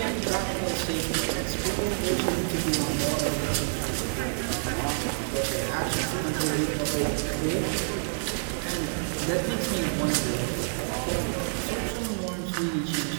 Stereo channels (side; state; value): left; silent; digital silence